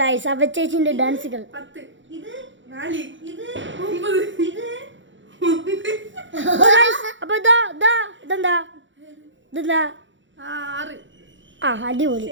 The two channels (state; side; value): late; left; 0.55 ms